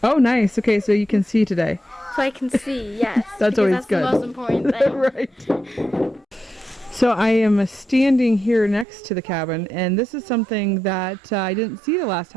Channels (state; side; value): drops out; left; at 8.8 s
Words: Oh, nice. Okay, so you can see today. So I can see, yes. That's always that's good. The most important thing. Right. So I am standing here next to the cabin, and this is something that I didn't see the last